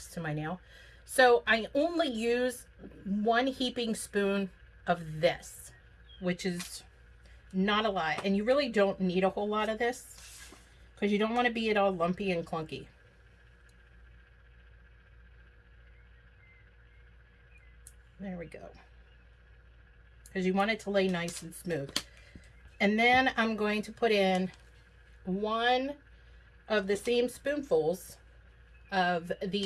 to my nail. So I only use 1 heaping spoon of this, which is not a lot. And you really don't need a whole lot of this because you don't want to be it all lumpy and clunky. There we go. Because you want it to lay nice and smooth. And then I'm going to put in 1 of the same spoonfuls of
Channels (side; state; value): both; identical; correlation 1.00